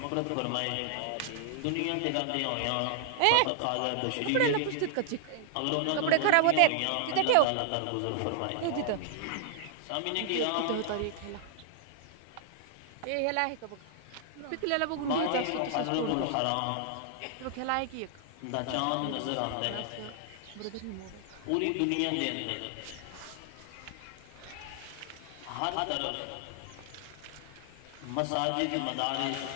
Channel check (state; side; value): different; both; correlation 0.00